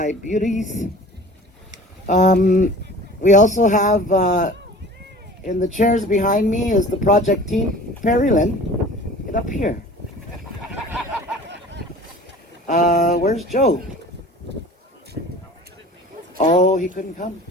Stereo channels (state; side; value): normal; both; correlation 0.43